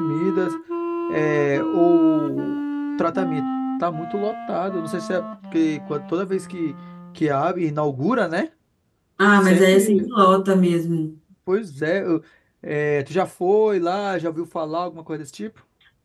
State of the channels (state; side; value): identical; both; correlation 1.00